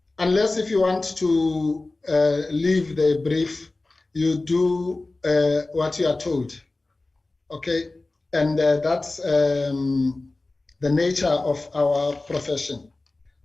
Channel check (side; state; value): right; quieter; 3.1 dB